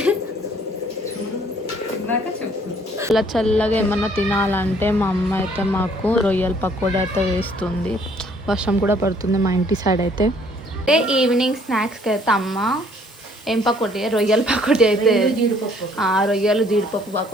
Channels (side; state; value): both; normal; correlation 0.61